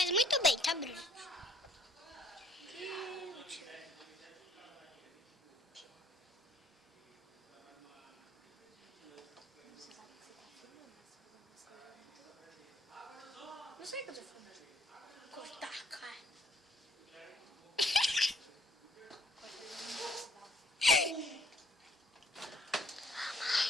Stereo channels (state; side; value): normal; both; correlation 0.63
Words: muito bem, tá, Bruno? Não sei o que eu tô falando. Cortar, cara.